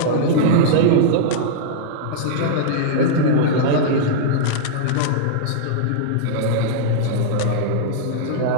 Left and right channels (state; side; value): different; both; correlation -0.02